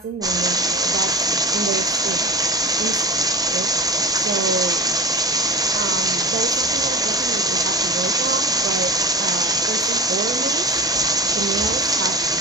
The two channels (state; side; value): normal; both; correlation 0.31